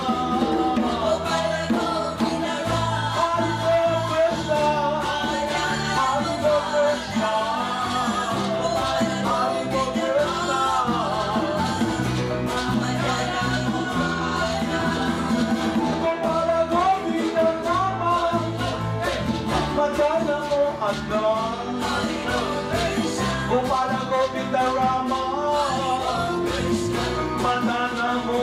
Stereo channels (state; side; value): identical; both; correlation 1.00